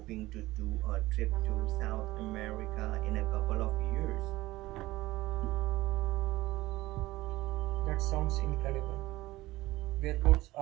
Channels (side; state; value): left; quieter; 18.2 dB